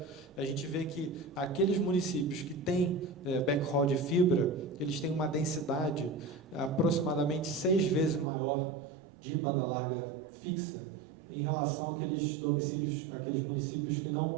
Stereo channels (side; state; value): left; drops out; at 8.2 s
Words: a gente vê que aqueles municípios que têm backhaul de fibra, eles têm uma densidade aproximadamente 6 vezes maior de banda larga fixa em relação àqueles domicílios, aqueles municípios que não